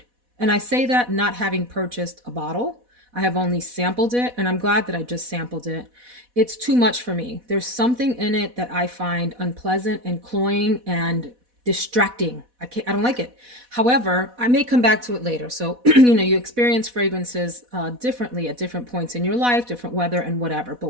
And I say that not having purchased a bottle. I have only sampled it, and I'm glad that I just sampled it. It's too much for me. There's something in it that I find unpleasant and cloying and distracting. I don't like it. However, I may come back to it later. So, you know, you experience fragrances differently at different points in your life, different weather and whatever.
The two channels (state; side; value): late; left; 4.1 ms